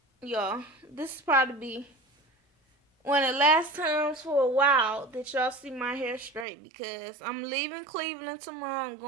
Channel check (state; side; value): drops out; left; at 6.5 s